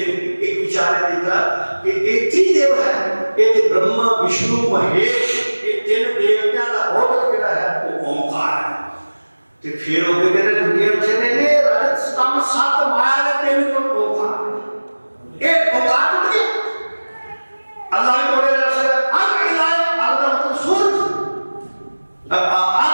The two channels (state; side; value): inverted; both; correlation -1.00